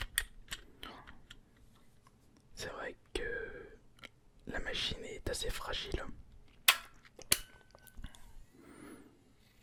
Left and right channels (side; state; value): both; identical; correlation 1.00